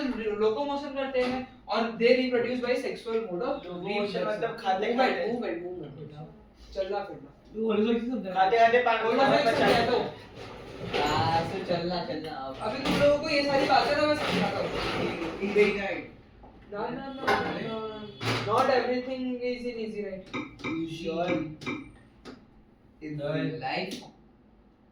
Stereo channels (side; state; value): both; identical; correlation 1.00